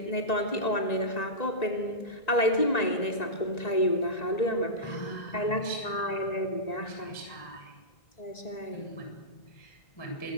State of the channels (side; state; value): right; late; 1.9 ms